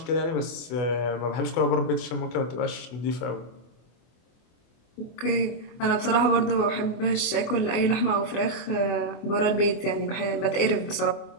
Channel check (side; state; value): right; late; 24 ms